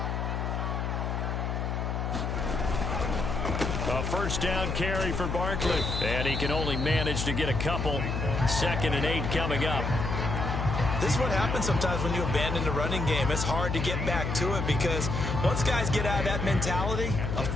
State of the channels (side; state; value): left; noise; hum, 2 dB below the sound